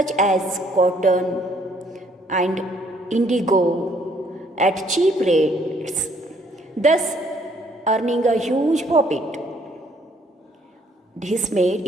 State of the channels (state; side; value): normal; both; correlation 0.65